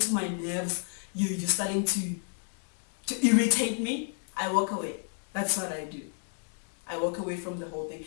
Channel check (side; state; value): right; silent; 57 dB below the other